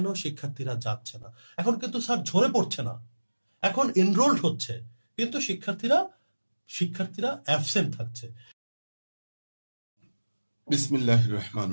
শিক্ষার্থীরা যাচ্ছে না? এখন কিন্তু স্যার ঝরে পড়ছে না, এখন এনরোল্ড হচ্ছে, কিন্তু শিক্ষার্থীরা অ্যাবসেন্ট থাকছে। বিসমিল্লাহির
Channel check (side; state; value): both; inverted; correlation -1.00